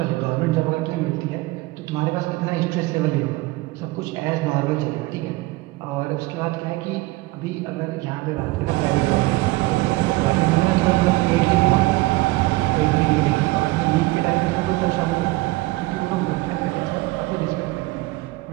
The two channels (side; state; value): left; quieter; 20.9 dB